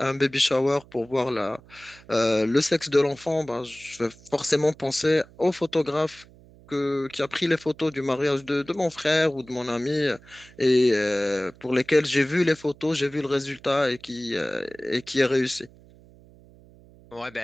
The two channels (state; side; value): noise; right; hum, 24 dB below the sound